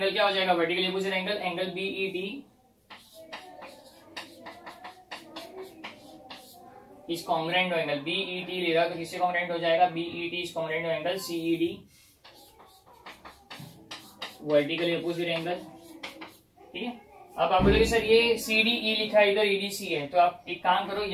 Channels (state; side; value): identical; both; correlation 1.00